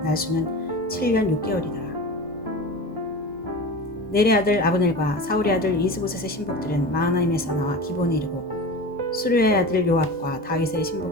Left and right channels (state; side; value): normal; both; correlation 0.31